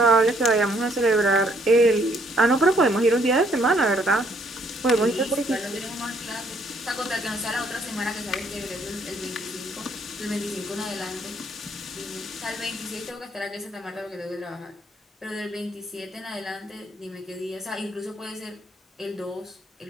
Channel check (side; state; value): both; normal; correlation 0.67